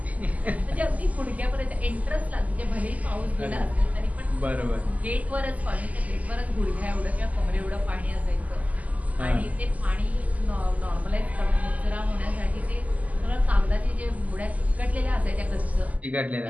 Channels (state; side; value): late; left; 0.075 ms